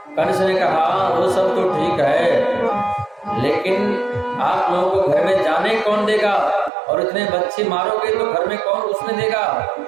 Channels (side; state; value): left; drops out; at 6.7 s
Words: कंस ने कहा वो सब तो ठीक है, लेकिन आप लोगों को घर में जाने कौन देगा? और इतने बच्चे मारोगे तो घर में कौन घुसने देगा?